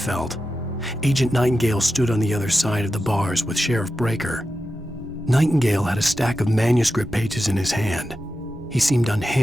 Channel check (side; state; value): both; normal; correlation 0.91